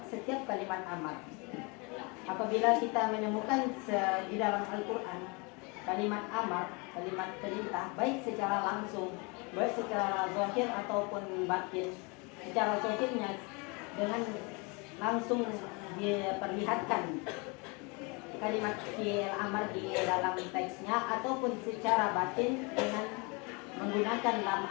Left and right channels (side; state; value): right; quieter; 30.0 dB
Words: setiap kalimat amar. Apabila kita menemukan di dalam Al-Qur'an kalimat amar, kalimat perintah baik secara langsung, baik secara zahir ataupun batin. Secara zahirnya dengan langsung diperlihatkan kalimat fi'il amar di dalam teksnya ataupun secara batin dengan menggunakan lam